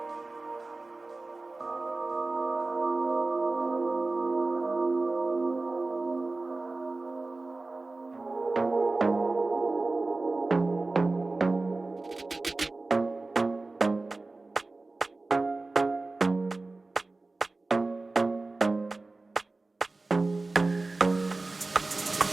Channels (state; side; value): quieter; left; 3.3 dB